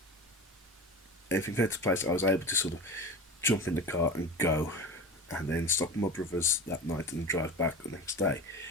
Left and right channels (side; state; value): both; normal; correlation 0.32